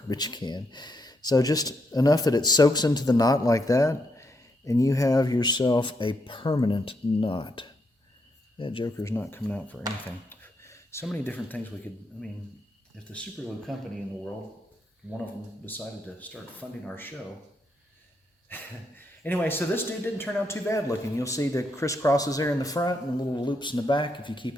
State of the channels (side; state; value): both; normal; correlation 0.78